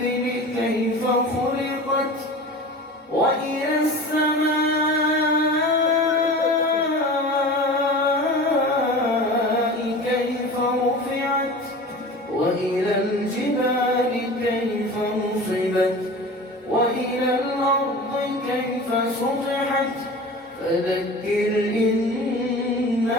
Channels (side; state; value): both; normal; correlation 0.36